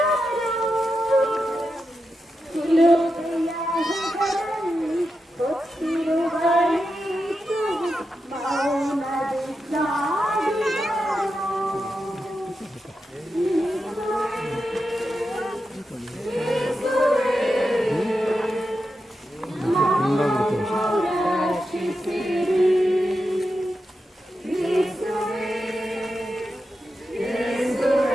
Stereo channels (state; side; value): normal; both; correlation 0.88